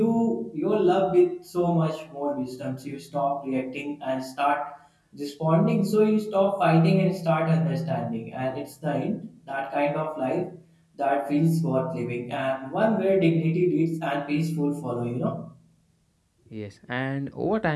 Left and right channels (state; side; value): identical; both; correlation 1.00